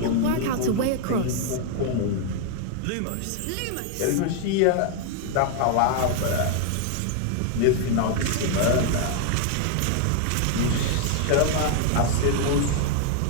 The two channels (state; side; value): different; both; correlation 0.00